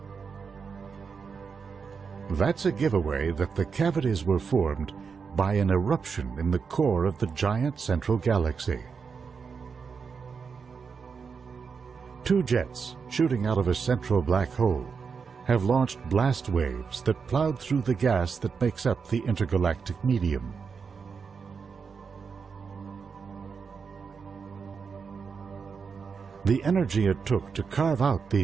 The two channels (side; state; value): left; quieter; 5.7 dB